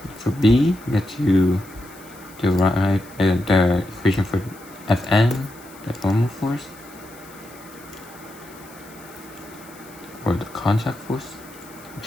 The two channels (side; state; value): left; noise; hiss, 22 dB below the sound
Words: For B, we get to derive the equation for Fn, the normal force, or the contact force,